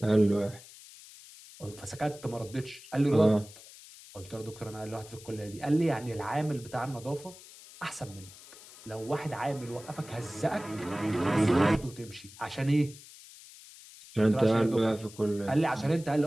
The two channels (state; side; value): noise; left; hiss, 19 dB below the sound